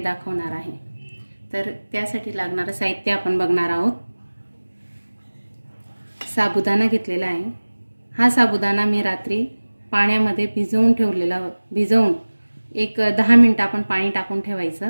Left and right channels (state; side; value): inverted; both; correlation -1.00